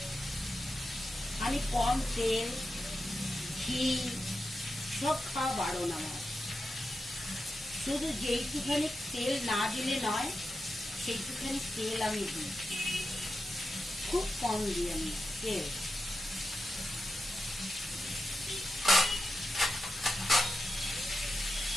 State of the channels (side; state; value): both; normal; correlation 0.90